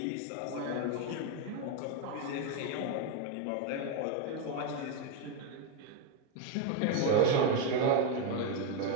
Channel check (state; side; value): different; both; correlation 0.02